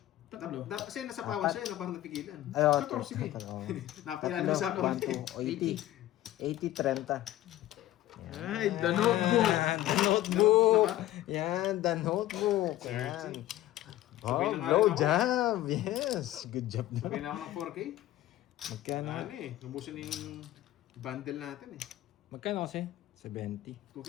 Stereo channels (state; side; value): quieter; right; 14.6 dB